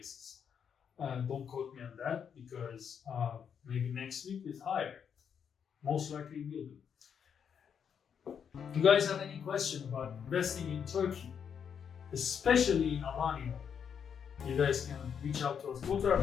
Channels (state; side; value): quieter; right; 7.5 dB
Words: Don't quote me on that, because maybe next week is higher. Most likely will be. If you guys have any question about investing in Turkey, especially in Alanya, you guys can reach out to us. Go to our